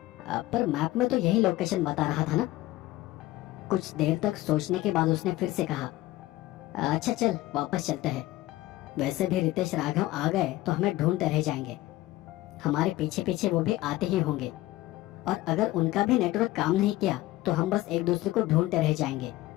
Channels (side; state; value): right; quieter; 17.1 dB